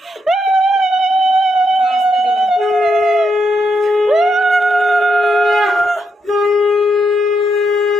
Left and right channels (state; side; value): normal; both; correlation 0.80